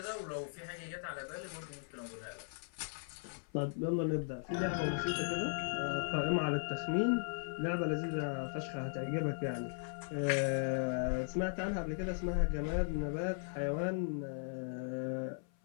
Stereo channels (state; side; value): silent; right; 53 dB below the other